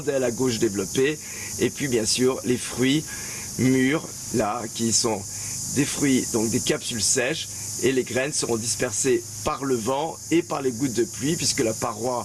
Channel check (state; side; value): identical; both; correlation 1.00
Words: aile à gauche développée, et puis bien sûr les fruits mûrs là qui sont des fruits, donc des capsules sèches, et les graines seront dispersées par le vent et par les gouttes de pluie puisque la